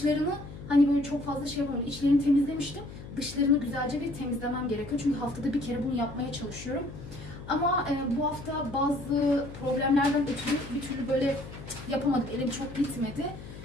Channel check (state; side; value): noise; left; hum, 13 dB below the sound